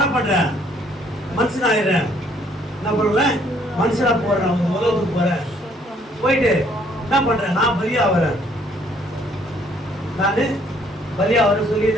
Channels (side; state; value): both; normal; correlation 0.64